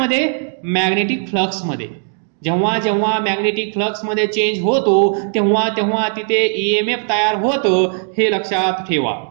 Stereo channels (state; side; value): silent; left; 68 dB below the other